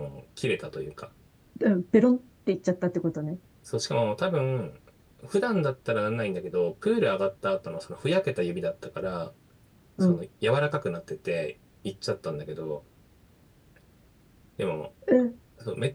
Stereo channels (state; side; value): identical; both; correlation 1.00